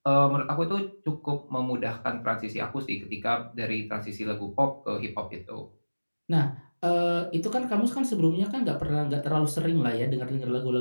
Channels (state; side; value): inverted; both; correlation -1.00